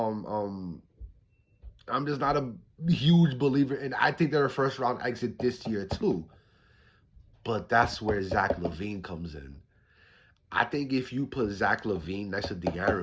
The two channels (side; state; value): both; identical; correlation 1.00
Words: just not a huge believer in. I think they're a first round exit this year too. But that's where Zach LaVine comes in. I think if you put Zach LaVine next to